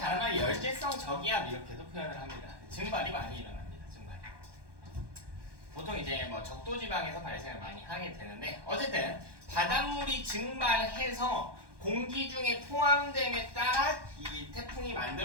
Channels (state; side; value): late; left; 1.2 ms